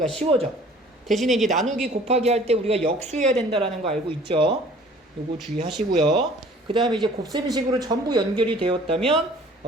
쉬워져. 대신에 이제 나누기 곱하기 할 때 우리가 역수해야 된다라는 거 알고 있죠? 요거 주의하시고요. 그 다음에 이제 곱셈식으로 전부 연결이 되었다면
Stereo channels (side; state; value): both; normal; correlation 0.51